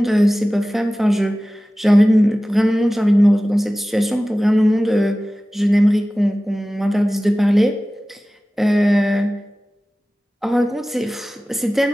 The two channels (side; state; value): both; normal; correlation 0.97